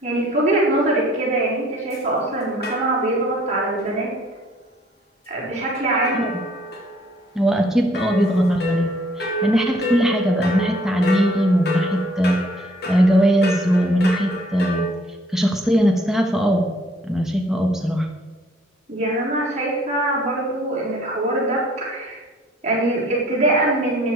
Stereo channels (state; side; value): normal; both; correlation 0.60